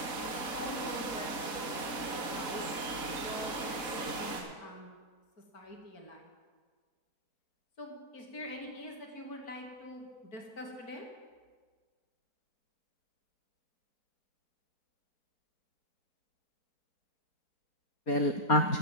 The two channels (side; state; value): right; late; 3.8 ms